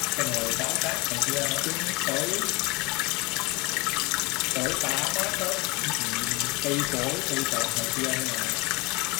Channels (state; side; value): quieter; right; 25.6 dB